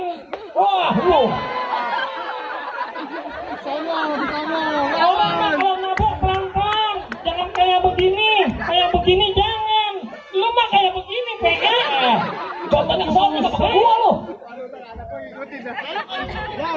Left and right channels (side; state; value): both; identical; correlation 1.00